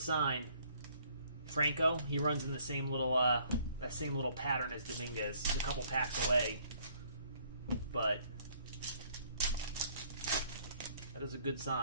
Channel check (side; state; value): both; inverted; correlation -0.62